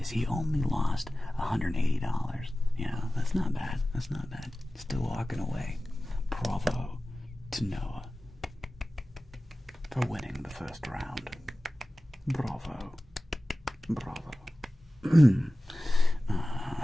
So he only lost $180. Yeah, that's not bad. That's not bad. Still walking away. Bravo to Noah for winning the first round. Bravo.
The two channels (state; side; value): normal; both; correlation 0.96